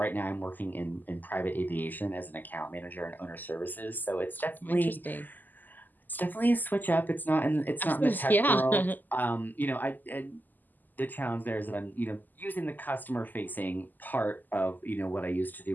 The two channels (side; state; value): right; late; 0.086 ms